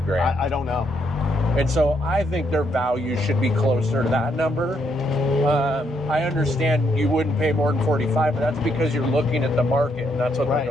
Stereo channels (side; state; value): both; normal; correlation 0.75